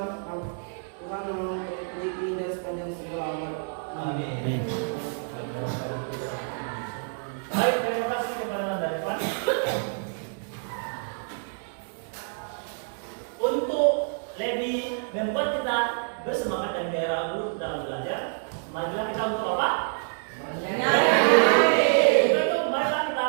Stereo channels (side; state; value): left; silent; 60 dB below the other